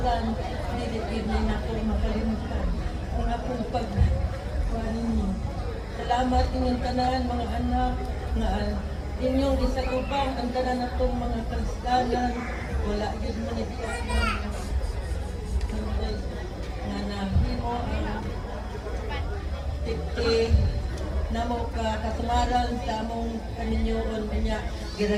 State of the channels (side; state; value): both; identical; correlation 1.00